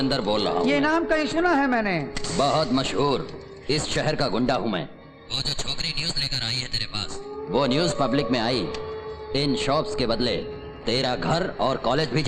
बोल रहा हूँ। ये नाम कहीं सुना है मैंने। बहुत मशहूर इस शहर का गुंडा हूँ मैं। वो जो छोकरी न्यूज लेकर आई है तेरे पास, वो न्यूज पब्लिक में आई। इन शॉप्स के बदले तेरा घर और कॉलेज भी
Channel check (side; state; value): both; identical; correlation 1.00